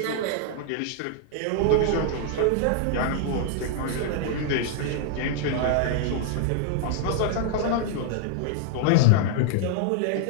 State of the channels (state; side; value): different; both; correlation 0.00